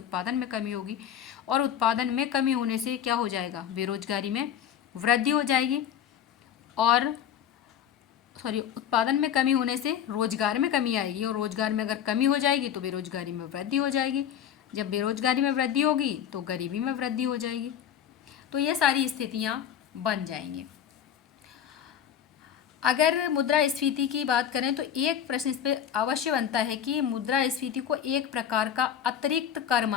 में कमी होगी, और उत्पादन में कमी होने से क्या हो जाएगा, बेरोजगारी में वृद्धि हो जाएगी, और उत्पादन में कमी होने से रोजगार में कमी आएगी, और रोजगार में अगर कमी हो जाएगी तो बेरोजगारी में वृद्धि हो जाएगी, जब बेरोजगारी में वृद्धि होगी तो गरीबी में वृद्धि हो जाएगी। तो ये सारी स्थितियाँ बन जाएंगी। अगर मुद्रास्फीति की बात करें तो एक प्रश्न इस पर अवश्य बनता है कि मुद्रास्फीति को एक प्रकार का अतिरिक्त कर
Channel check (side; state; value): right; quieter; 9.3 dB